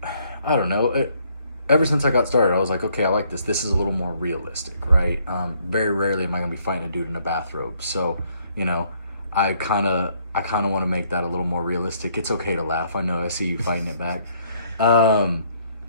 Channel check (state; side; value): inverted; both; correlation -0.67